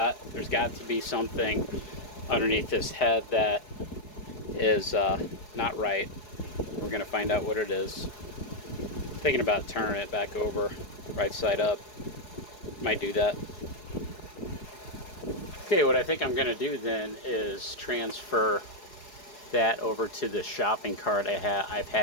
got to be something underneath this head that is not right. We're going to find out what it is. Thinking about turning it back over, right side up. Might do that. Okay, what I think I'm going to do then is transfer that over to the shopping cart I've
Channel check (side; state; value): right; late; 4.7 ms